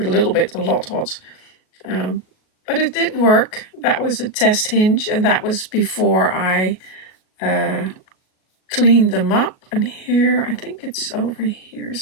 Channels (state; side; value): late; right; 37 ms